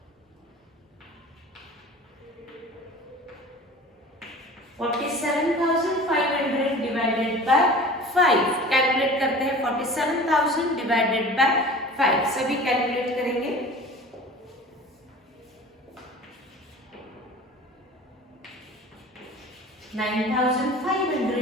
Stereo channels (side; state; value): both; normal; correlation 0.40